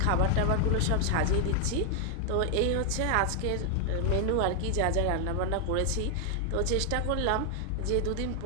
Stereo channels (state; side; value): different; both; correlation 0.00